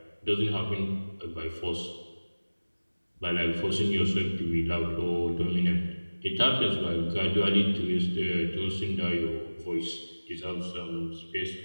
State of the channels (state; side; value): inverted; both; correlation -1.00